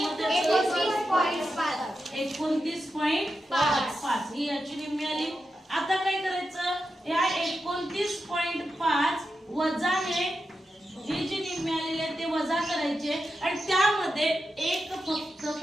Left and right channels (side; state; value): both; normal; correlation 0.89